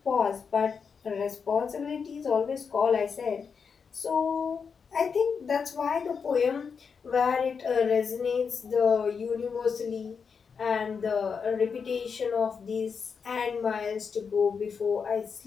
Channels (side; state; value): right; quieter; 5.9 dB